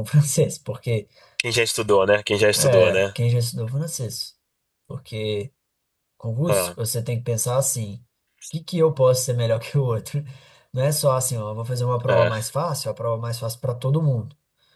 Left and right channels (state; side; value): identical; both; correlation 1.00